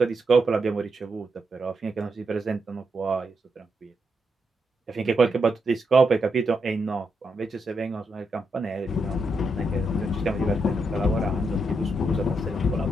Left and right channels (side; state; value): both; normal; correlation 0.82